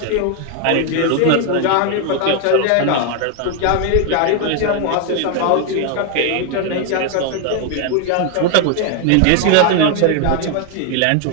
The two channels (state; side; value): different; both; correlation 0.01